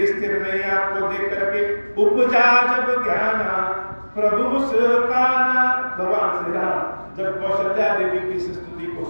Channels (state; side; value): inverted; both; correlation -1.00